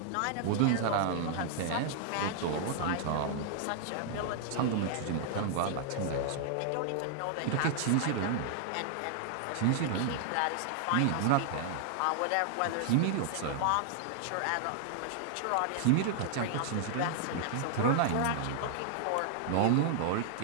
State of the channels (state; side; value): different; both; correlation -0.01